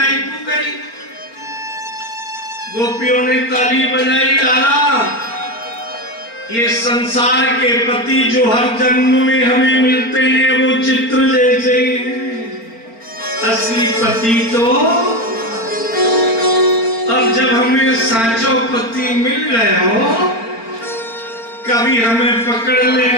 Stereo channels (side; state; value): right; late; 4.4 ms